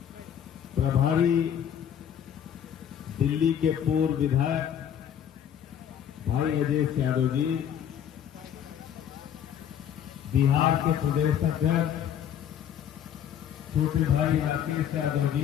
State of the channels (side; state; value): right; quieter; 9.3 dB